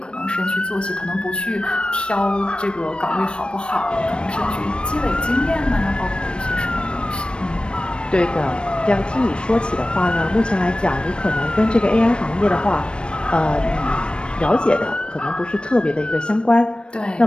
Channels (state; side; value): late; right; 0.056 ms